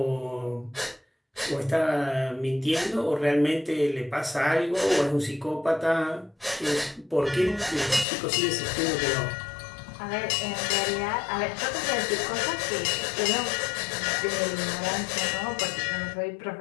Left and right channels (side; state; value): right; drops out; at 8.1 s